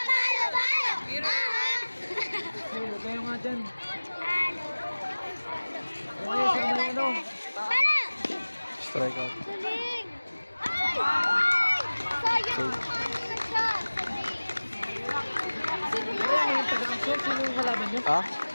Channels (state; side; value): inverted; both; correlation -1.00